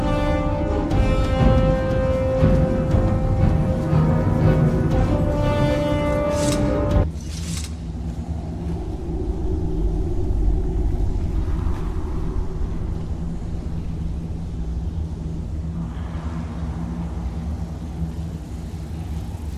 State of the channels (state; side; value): identical; both; correlation 1.00